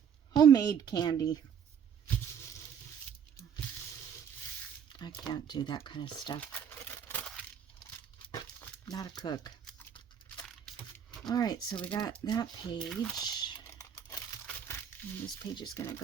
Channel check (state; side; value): quieter; left; 8.0 dB